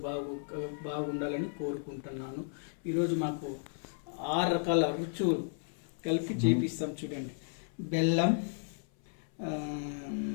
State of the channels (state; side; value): silent; right; 55 dB below the other